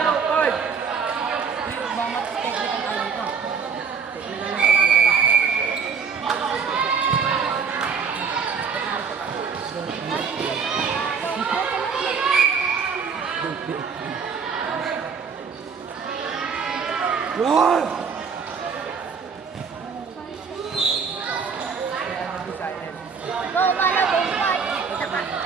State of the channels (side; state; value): left; quieter; 5.8 dB